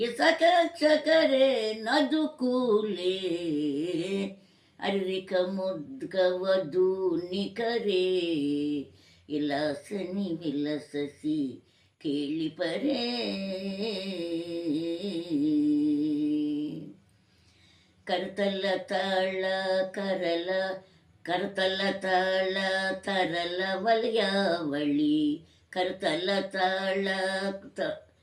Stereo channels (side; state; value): both; identical; correlation 1.00